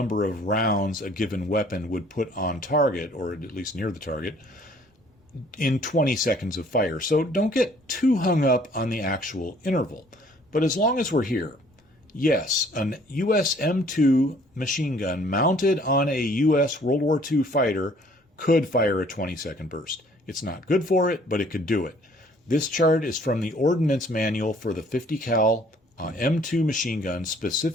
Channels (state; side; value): normal; both; correlation 0.58